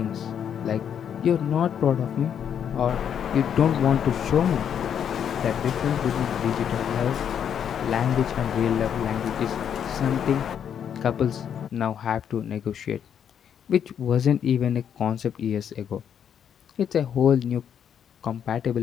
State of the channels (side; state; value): right; quieter; 8.5 dB